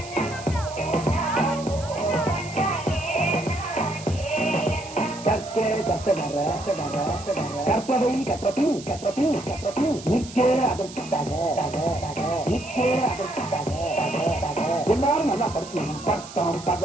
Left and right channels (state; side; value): noise; right; hiss, 16 dB below the sound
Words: கற்பவை கற்றபின் நிற்க அதற்காக எல்லாரும் நல்லா படிச்சு பட்டம்